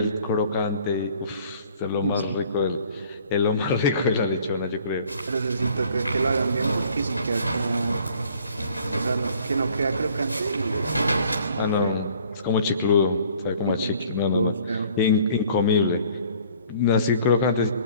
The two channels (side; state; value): both; inverted; correlation -0.55